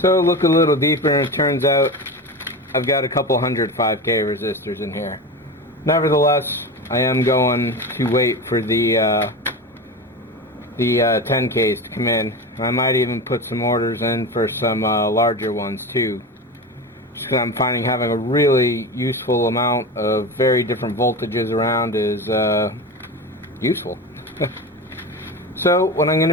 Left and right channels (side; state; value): both; normal; correlation 0.25